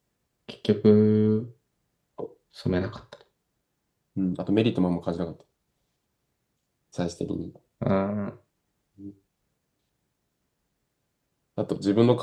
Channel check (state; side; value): identical; both; correlation 1.00